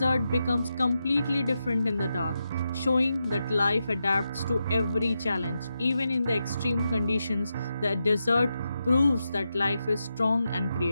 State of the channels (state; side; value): inverted; both; correlation -0.87